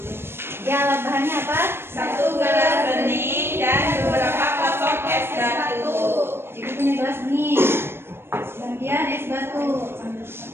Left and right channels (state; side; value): late; left; 0.12 ms